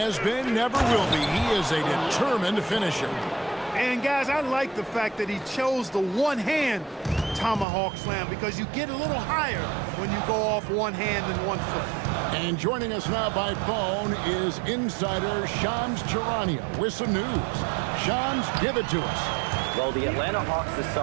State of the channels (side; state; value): left; drops out; at 7.7 s